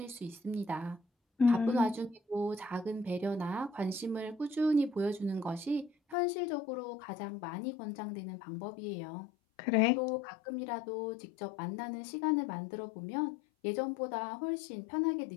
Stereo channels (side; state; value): right; drops out; at 6.2 s